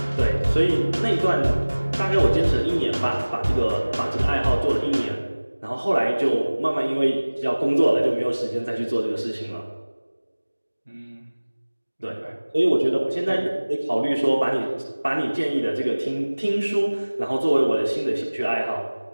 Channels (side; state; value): both; inverted; correlation -1.00